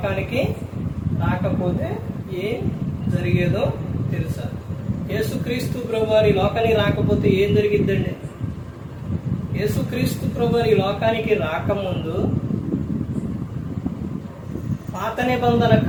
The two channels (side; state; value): both; identical; correlation 1.00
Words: రాకపోతే ఏం జరిగేదో తెలుసా? యేసుక్రీస్తు ప్రభువారు ఈ లోకానికి రాకపోతే ఏం జరిగిద్దండి? యేసుక్రీస్తు ప్రభువారు ఈ లోకానికి రాకముందు పాత నిబంధన